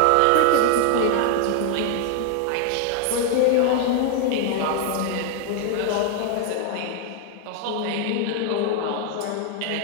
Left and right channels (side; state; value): both; different; correlation 0.00